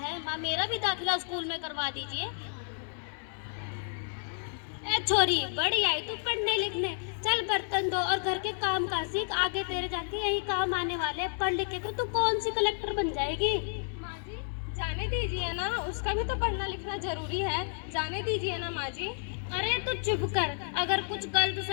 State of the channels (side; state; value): right; silent; digital silence